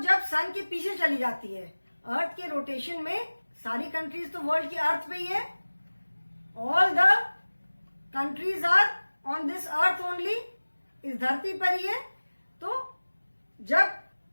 सन के पीछे चली जाती है, अर्थ के रोटेशन में सारी कंट्रीज तो वर्ल्ड की अर्थ पे ही है, all the countries are on this earth only, इस धरती पर ही है। तो जब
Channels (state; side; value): inverted; both; correlation -1.00